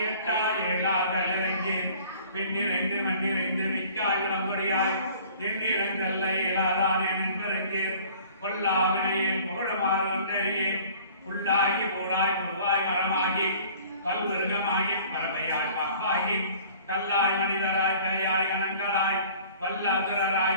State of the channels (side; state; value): both; inverted; correlation -0.50